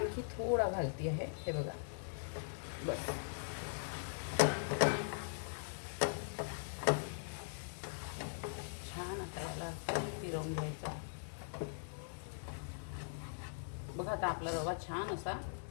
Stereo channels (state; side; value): silent; right; 50 dB below the other